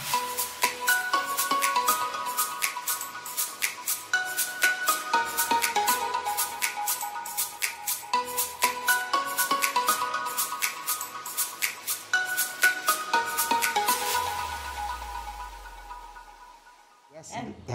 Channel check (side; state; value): both; identical; correlation 1.00